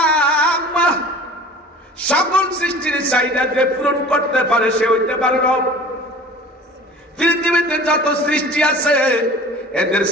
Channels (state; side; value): normal; both; correlation 0.43